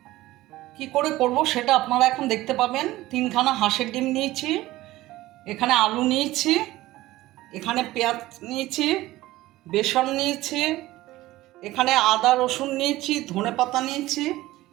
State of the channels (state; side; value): quieter; left; 17.1 dB